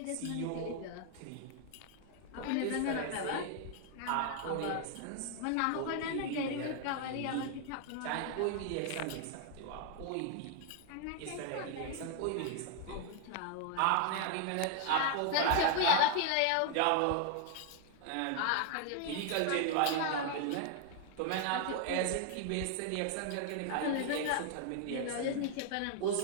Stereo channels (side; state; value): both; different; correlation 0.00